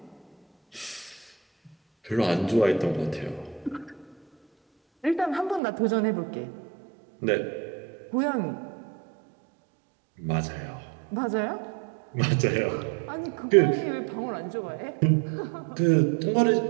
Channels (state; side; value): drops out; left; at 5.6 s